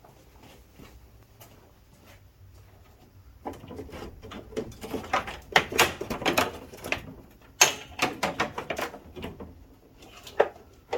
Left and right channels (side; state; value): both; identical; correlation 1.00